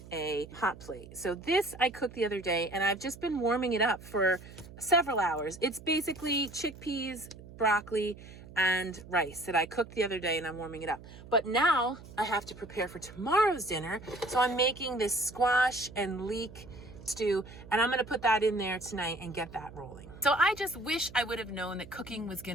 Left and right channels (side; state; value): right; noise; hum, 17 dB below the sound